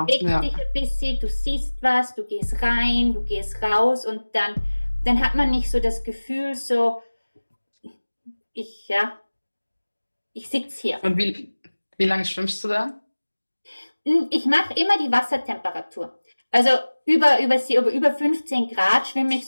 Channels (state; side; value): inverted; both; correlation -1.00